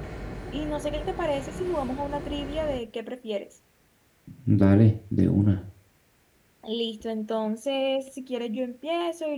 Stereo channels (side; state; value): both; identical; correlation 1.00